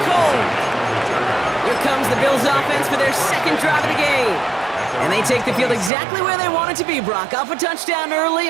cold. Here comes the Bills offense for their second drive of the game. And they take the field exactly where they want it to be, Brock. Off a touchdown early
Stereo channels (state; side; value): drops out; left; at 5.9 s